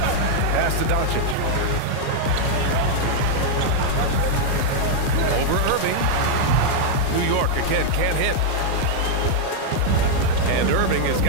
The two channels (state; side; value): different; both; correlation -0.01